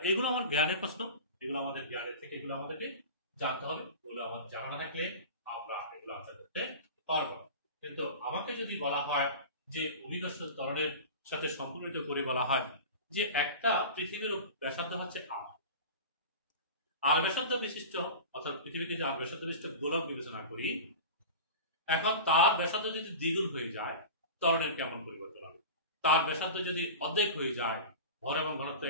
এগুলো আমার জ্ঞানের প্রশ্ন, এগুলো আমাদের জ্ঞানের থেকে এগুলো আমাদেরকে জানতে হবে। এগুলো আমার জানা না থাকলে আমরা এগুলো আনসার করতে পারবো। কিন্তু আমাকে যদি বলা হয় যে অভিকর্ষজ ত্বরণের সাথে সম্পর্কিত করে বলা হয় যে একটা পৃথিবীর ব্যাসার্ধ হচ্ছে আর ব্যাসার্ধ বিশিষ্ট, অর্থাৎ পৃথিবীকে যে আর ব্যাসার্ধ বিশিষ্ট গোলক বিবেচনা করি, এখন তার ব্যাসার্ধ যদি দ্বিগুণ হয়ে যায় ত্বরণের কেমন পরিবর্তন হবে? তার ব্যাসার্ধ যদি অর্ধেক হয়ে যায়, ভর এবং ঘনত্ব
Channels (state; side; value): inverted; both; correlation -0.33